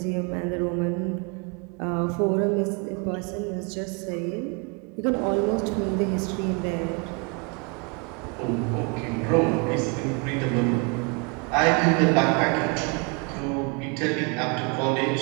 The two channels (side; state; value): left; quieter; 32.8 dB